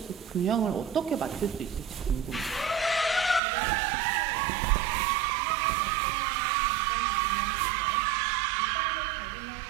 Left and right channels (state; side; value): drops out; left; at 3.4 s